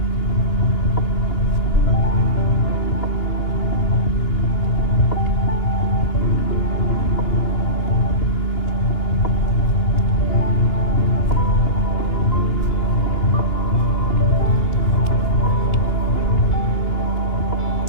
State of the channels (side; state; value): right; late; 2.8 ms